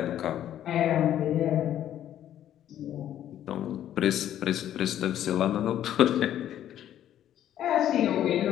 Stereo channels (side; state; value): right; quieter; 11.3 dB